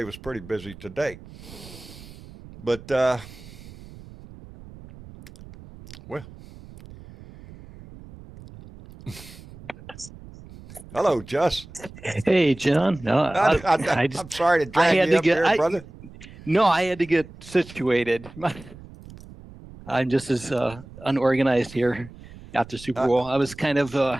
was pretty busy today. But, well. Hello, Jess. Hey, John. No, I'm sorry to drag you up here, brother. No, I had to get situated. I'm just as unorganized here after Super Bowl. I was kind of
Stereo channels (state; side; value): noise; right; rumble, 18 dB below the sound